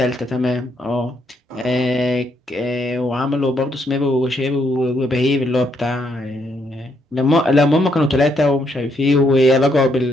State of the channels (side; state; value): both; normal; correlation 0.74